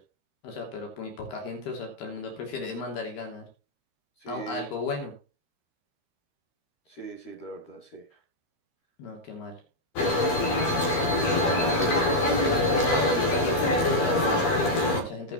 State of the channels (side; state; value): right; late; 13 ms